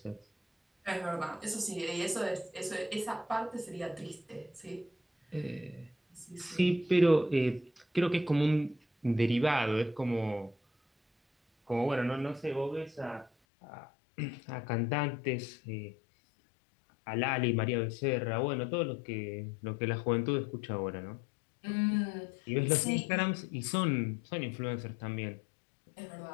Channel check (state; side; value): drops out; right; at 13.3 s